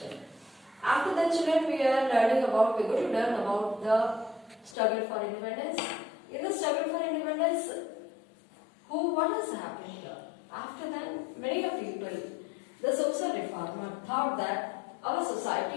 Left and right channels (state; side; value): drops out; right; at 4.8 s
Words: After that, children, we're going to learn about the struggle for independence. In the struggle for independence, what has happened here? After that, many of people, the social reformer, thought that our